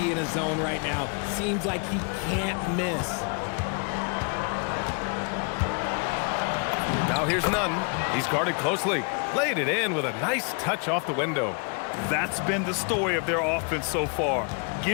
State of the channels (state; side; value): quieter; right; 37.3 dB